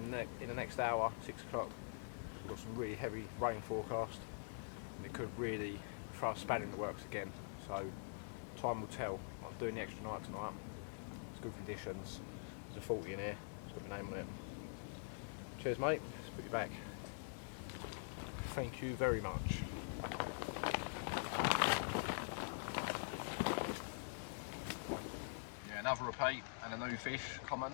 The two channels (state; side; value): silent; right; digital silence